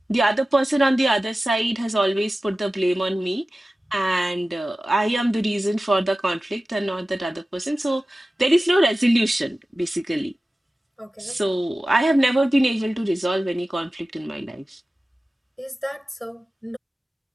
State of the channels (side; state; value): both; normal; correlation 0.96